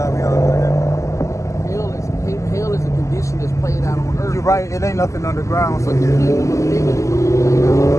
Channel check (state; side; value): late; right; 0.15 ms